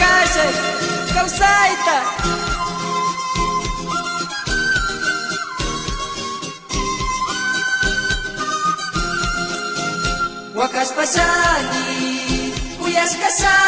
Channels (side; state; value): both; identical; correlation 1.00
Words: kausay ta wakas pasani kuyas